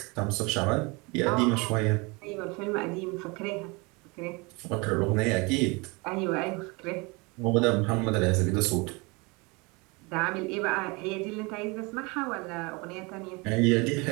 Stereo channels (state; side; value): quieter; left; 27.3 dB